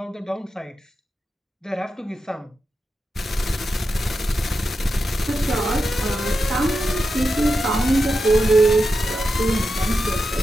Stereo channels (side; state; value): both; normal; correlation 0.89